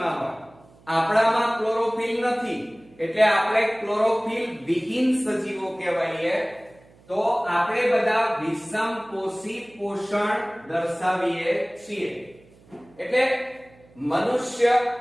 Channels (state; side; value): noise; right; hum, 27 dB below the sound